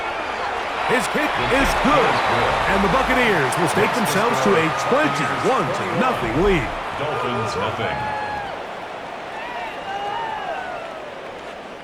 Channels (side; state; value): both; identical; correlation 1.00